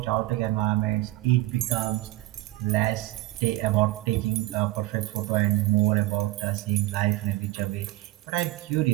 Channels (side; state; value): left; quieter; 17.2 dB